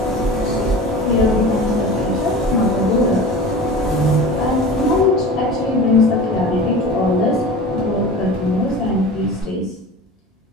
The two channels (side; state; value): both; normal; correlation 0.35